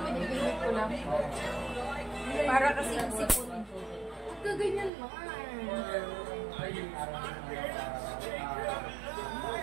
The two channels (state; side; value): drops out; left; at 4.9 s